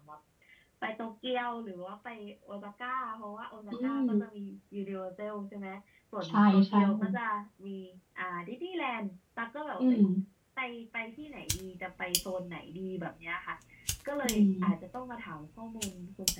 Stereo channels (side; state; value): both; identical; correlation 1.00